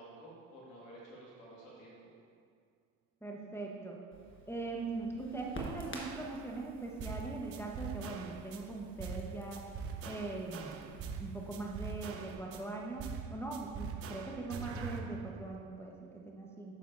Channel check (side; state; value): left; quieter; 3.3 dB